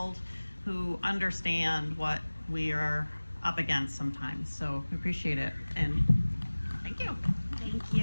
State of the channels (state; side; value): inverted; both; correlation -1.00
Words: who understand what we are up against sometimes. So we appreciate it, and thank you. Thank